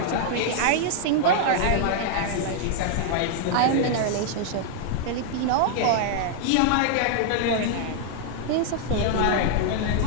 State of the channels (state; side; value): different; both; correlation 0.00